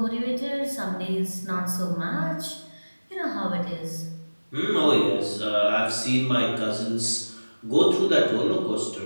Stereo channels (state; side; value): inverted; both; correlation -1.00